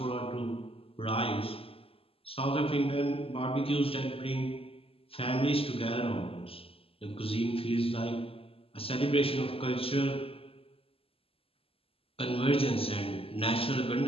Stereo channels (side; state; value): right; late; 0.27 ms